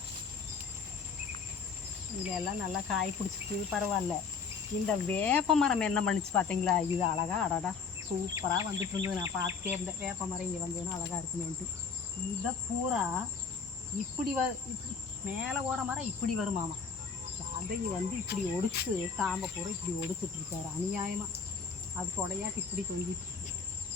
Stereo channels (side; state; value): right; quieter; 5.6 dB